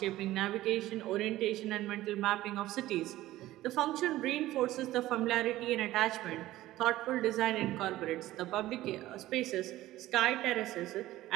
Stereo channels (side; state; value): left; quieter; 15.7 dB